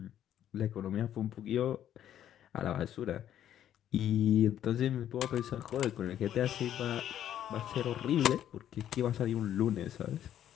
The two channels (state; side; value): quieter; right; 10.9 dB